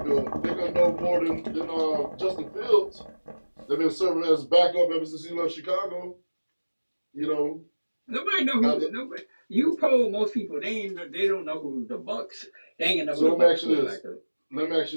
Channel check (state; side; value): inverted; both; correlation -1.00